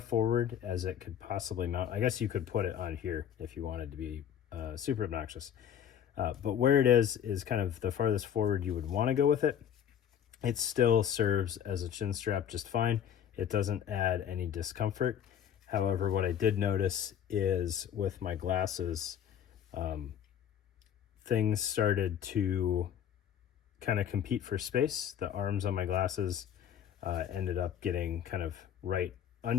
as it could possibly mount, I guess you could put it on here if you wanted to be super obnoxious. But where it is kind of the farthest forward you would want to go with it. It still serves as a chin strap just fine. It doesn't add any discomfort. However, what I did notice is with my glasses, things started to kind of compete for space. The arms on my glasses ended up getting kind of right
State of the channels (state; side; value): quieter; right; 9.3 dB